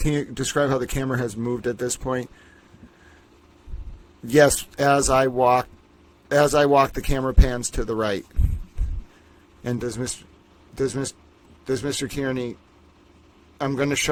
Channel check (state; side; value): identical; both; correlation 1.00